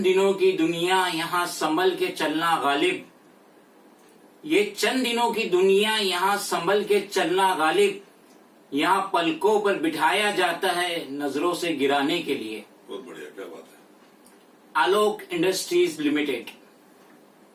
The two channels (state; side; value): identical; both; correlation 1.00